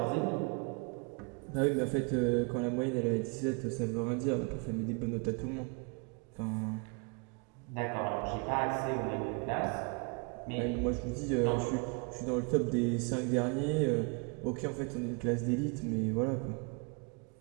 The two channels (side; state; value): left; quieter; 33.5 dB